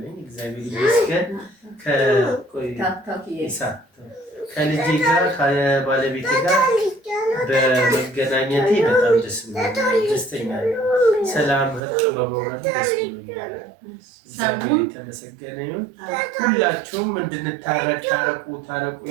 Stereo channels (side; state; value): left; drops out; at 11.8 s